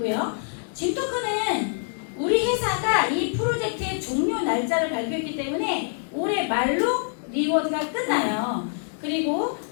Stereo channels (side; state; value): right; silent; digital silence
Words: 진토큰은 우리 회사가 이 프로젝트의 종료 날짜를 발표했기 때문에 올해 말로 리워드가 끝나요. 그리고